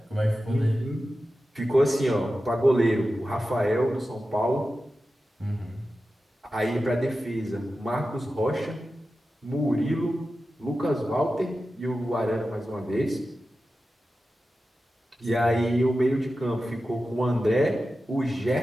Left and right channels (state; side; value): normal; both; correlation 0.93